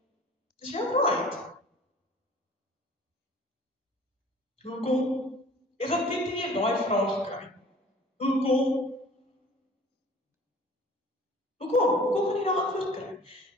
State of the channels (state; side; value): normal; both; correlation 0.48